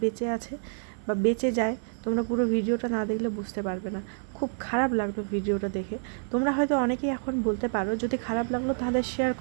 বেঁচে আছে বা বেঁচে যায়, তোমরা পুরো ভিডিওটা না দেখলে বুঝতে পারবে না। খুব খারাপ লাগলো ভিডিওটা দেখে। তোমরা হয়তো অনেকেই এখন বলতে পারো যদি খারাপ লাগলো তাহলে শেয়ার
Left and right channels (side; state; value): left; silent; digital silence